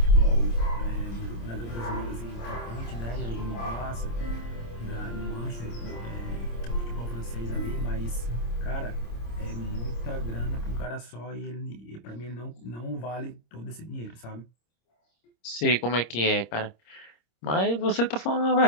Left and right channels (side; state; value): right; late; 26 ms